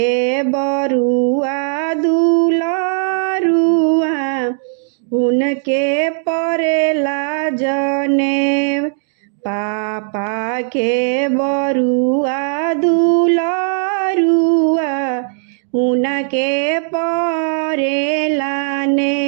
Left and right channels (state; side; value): silent; left; 62 dB below the other